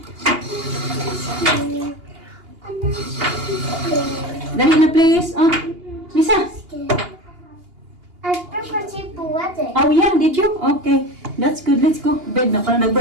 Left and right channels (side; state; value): left; late; 2.8 ms